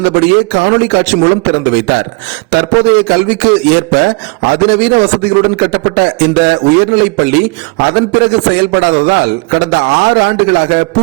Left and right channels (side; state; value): left; quieter; 29.6 dB